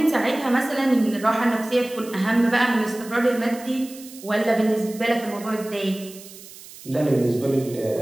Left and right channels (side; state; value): right; noise; hiss, 18 dB below the sound